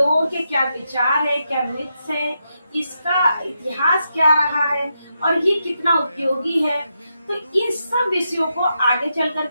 के क्या विचार है, क्या मिथ्स है, इसका इतिहास क्या रहा है और ये कितना उपयोगी है, तो इन सब विषयों को आगे चल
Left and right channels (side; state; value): both; inverted; correlation -0.84